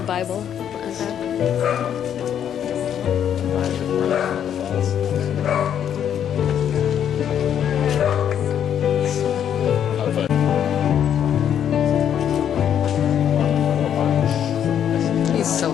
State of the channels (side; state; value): right; quieter; 9.3 dB